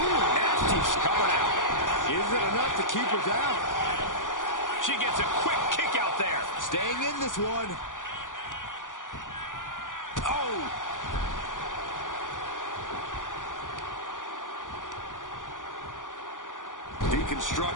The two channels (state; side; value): late; right; 0.88 ms